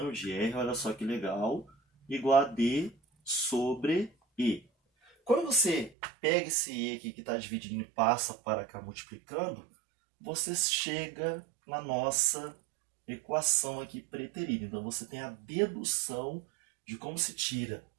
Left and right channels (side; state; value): left; drops out; at 5.9 s